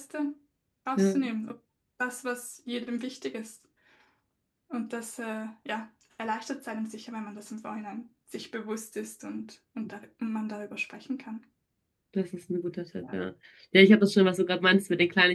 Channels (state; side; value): identical; both; correlation 1.00